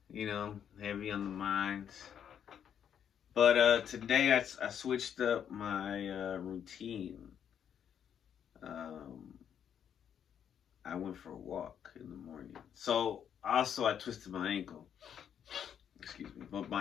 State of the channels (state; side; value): quieter; right; 8.7 dB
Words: heavy on the minds. But today I switched up my routine. I went for a walk in the morning. So also I twisted my ankle. Excuse me, but